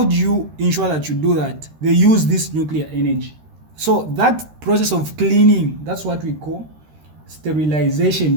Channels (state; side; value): late; left; 13 ms